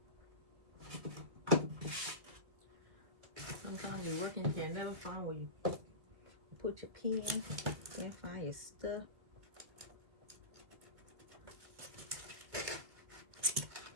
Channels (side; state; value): left; late; 2.1 ms